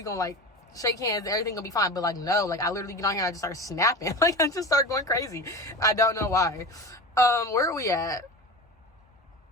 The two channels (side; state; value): both; normal; correlation 0.29